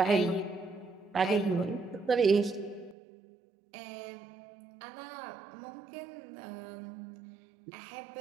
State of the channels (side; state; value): left; drops out; at 3.0 s